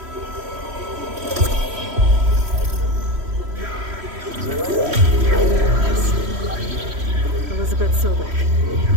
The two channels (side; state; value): left; late; 3.1 ms